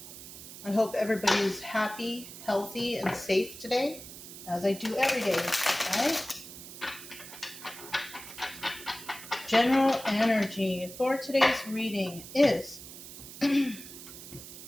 I hope everybody is happy, healthy, and safe today, as I do every day, right? General energy for today's reading is I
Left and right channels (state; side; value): noise; right; hiss, 14 dB below the sound